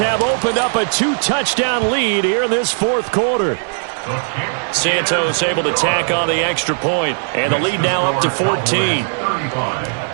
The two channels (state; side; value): silent; left; digital silence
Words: opened up a 2-touchdown lead here in this 4th quarter. Santos able to tack on the extra point, and the lead now up to 14.